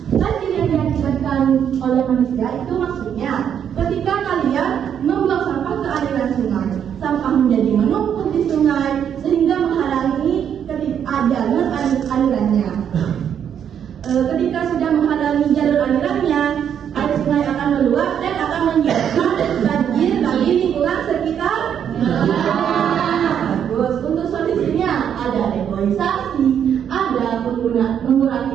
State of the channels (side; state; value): left; quieter; 8.7 dB